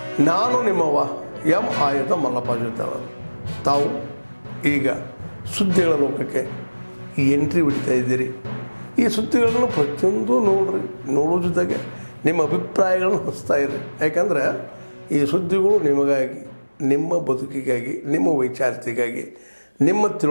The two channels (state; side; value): inverted; both; correlation -1.00